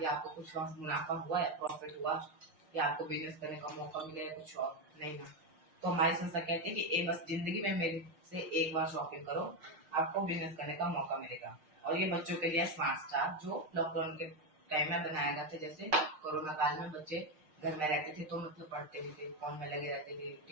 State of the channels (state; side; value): late; left; 6.5 ms